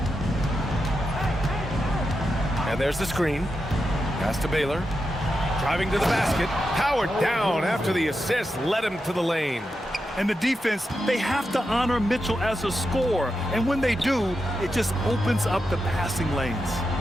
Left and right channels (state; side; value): normal; both; correlation 0.88